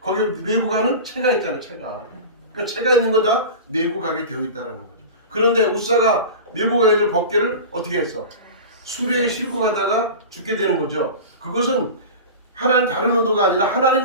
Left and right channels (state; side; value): inverted; both; correlation -0.31